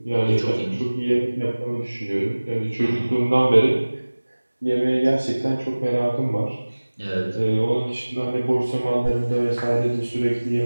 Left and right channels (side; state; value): both; inverted; correlation -1.00